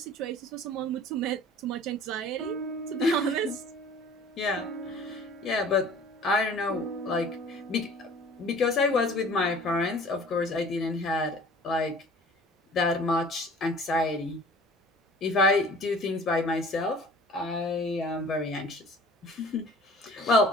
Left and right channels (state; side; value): normal; both; correlation 0.47